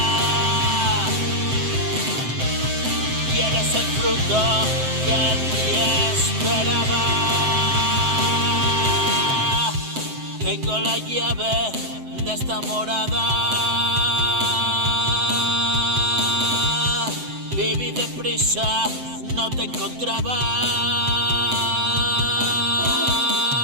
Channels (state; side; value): late; left; 7.7 ms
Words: Y eres el fruto que en mí esperaba. Tengo la llave de esta morada. Viví deprisa, no te encontraba.